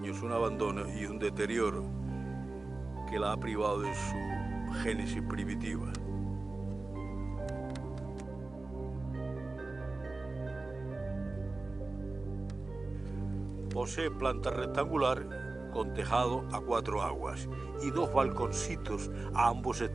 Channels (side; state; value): left; quieter; 3.2 dB